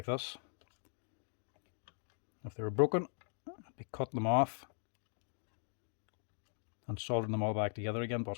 this. If they were broken, I'd be cutting them off and soldering them all back together again,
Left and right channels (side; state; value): right; silent; digital silence